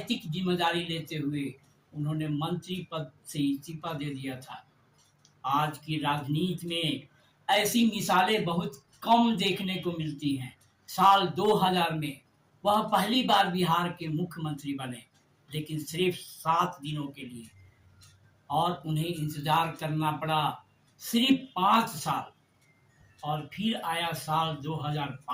जिम्मेदारी लेते हुए उन्होंने मंत्री पद से इस्तीफा दे दिया था। आज की राजनीति में ऐसी मिसालें बहुत कम देखने को मिलती हैं। साल 2000 में वह पहली बार बिहार के मुख्यमंत्री बने, लेकिन सिर्फ 7 दिनों के लिए। और उन्हें इंतजार करना पड़ा सिर्फ 5 साल। और फिर आया साल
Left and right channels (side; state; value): both; identical; correlation 1.00